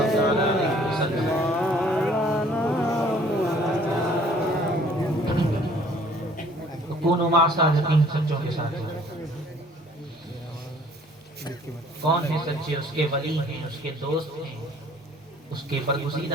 علیہ وسلم. کونوا مع الصادقین، سچوں کے ساتھ. کون ہیں سچے؟ اس کے ولی ہیں، اس کے دوست ہیں، اس کے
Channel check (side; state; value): both; normal; correlation 0.56